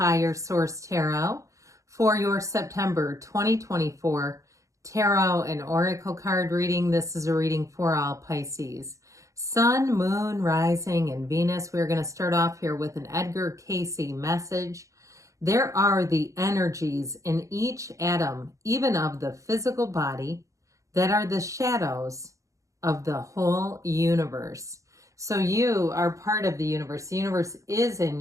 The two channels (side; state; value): left; late; 0.15 ms